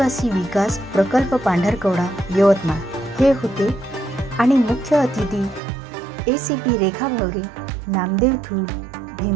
विकास प्रकल्प पांढरकवडा यवतमाळ हे होते आणि मुख्य अतिथी ACP Rekha Bhaware, Namdev Thul,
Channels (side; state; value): left; drops out; at 5.6 s